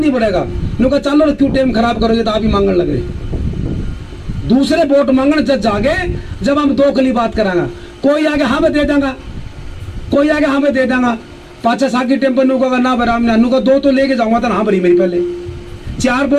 पड़ेगा, न्यू कहा चलो क्यों टाइम खराब करोगे, तो आप ही मांगने लग रहे। दूसरे वोट मांगने जब जागे, जब हम 2 कली बात करांगा, कोई आगे हाँ मैं दे देंगा, कोई आगे हाँ मैं दे देंगा, 5 साकी टेम्पो नु का ना राम ने नु का 2 तो लेके जाऊंगा, तो हाँ भरी मेरी पहले 4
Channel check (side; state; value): both; identical; correlation 1.00